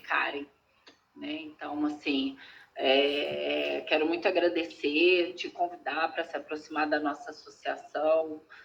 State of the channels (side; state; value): both; identical; correlation 1.00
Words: né? Então, assim, quero muito agradecer, te convidar para se aproximar da nossa associação,